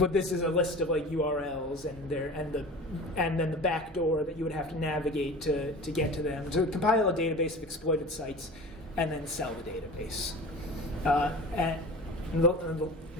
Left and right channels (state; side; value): normal; both; correlation 0.37